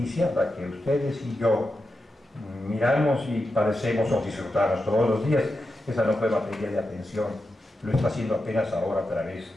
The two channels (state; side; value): normal; both; correlation 0.88